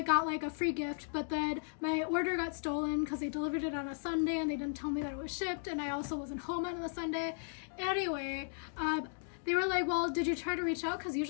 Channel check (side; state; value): right; silent; digital silence